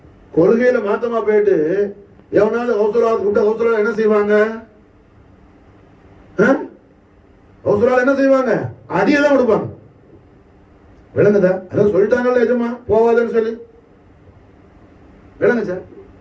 கொள்கையில மாத்தமா போயிட்டு எவனாவது கௌசலாவது கூப்பிட்டா கௌசலா என்ன செய்வாங்க? கௌசலால என்ன செய்வாங்க? அடியதான் கொடுப்பாங்க. விளங்குதா? அதான் சொல்லிட்டாங்கல்ல எஜமா போவாதுன்னு சொல்லி. விளங்குச்சா?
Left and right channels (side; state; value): both; identical; correlation 1.00